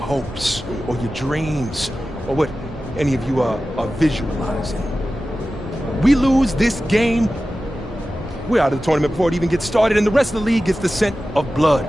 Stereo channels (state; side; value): normal; both; correlation 0.94